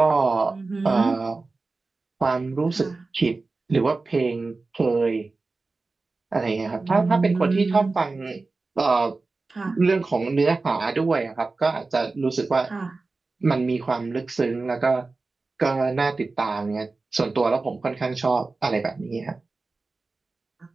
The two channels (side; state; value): left; quieter; 3.7 dB